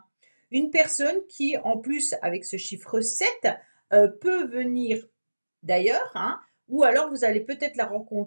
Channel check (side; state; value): both; inverted; correlation -1.00